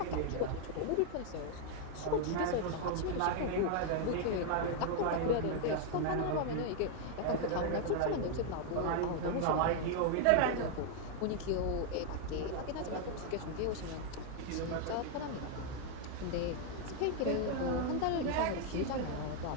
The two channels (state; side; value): different; both; correlation 0.00